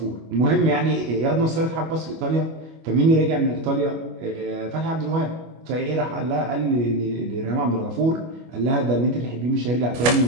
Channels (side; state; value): left; late; 25 ms